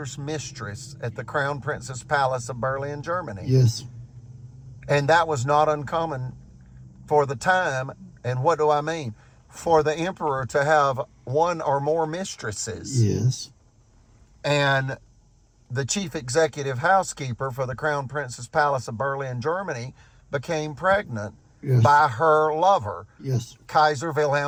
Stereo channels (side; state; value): both; identical; correlation 1.00